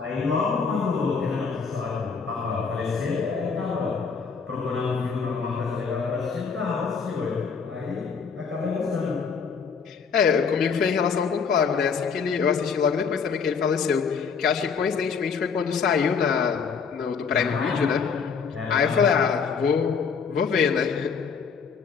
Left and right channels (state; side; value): quieter; right; 5.8 dB